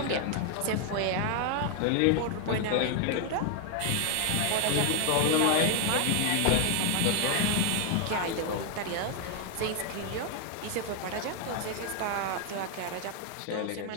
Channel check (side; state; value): both; different; correlation 0.01